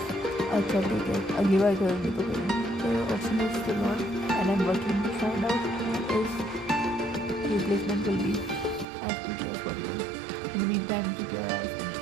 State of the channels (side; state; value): left; drops out; at 8.8 s